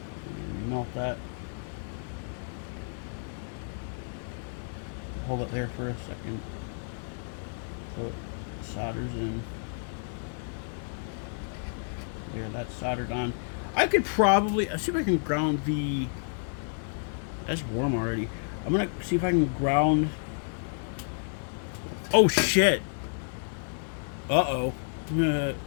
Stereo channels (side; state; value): right; silent; digital silence